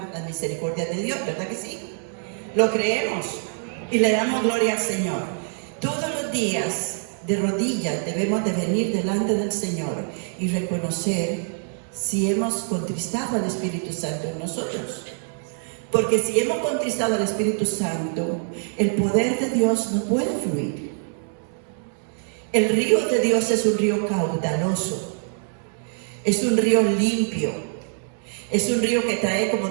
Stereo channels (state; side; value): silent; left; digital silence